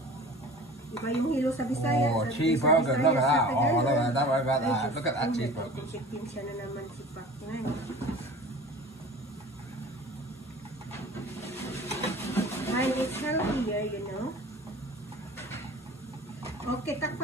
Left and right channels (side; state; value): both; normal; correlation 0.41